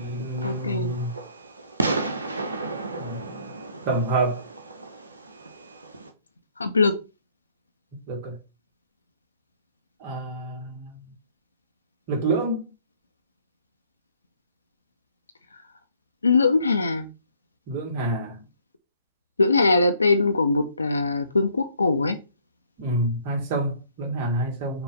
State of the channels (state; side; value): inverted; both; correlation -0.63